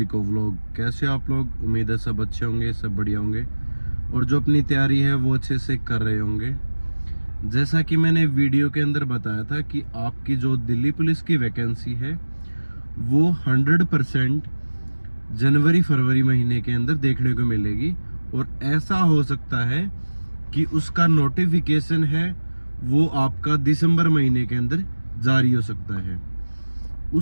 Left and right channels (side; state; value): both; inverted; correlation -1.00